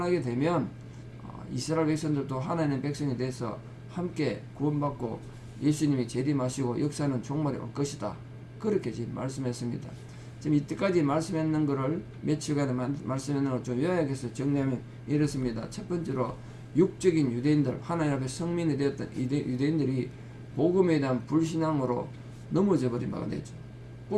되면 이스라엘 백성들도 하나님의 백성이 돼서 함께 구원받고 예수님이 재림하시고 역사는 종말이 올 것이다. 그렇게 지금 말씀했습니다. 지금 이때까지 말씀했는 것을 며칠간에 말씀했는 걸 좀 요약해서 정리하면 이렇습니다. 첫 번째로 육적인 유대인들, 하나님 앞에 성민이 되었던 유대인들이 복음에 대한 불신앙으로 넘어져 버린 바가 되죠.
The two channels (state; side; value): identical; both; correlation 1.00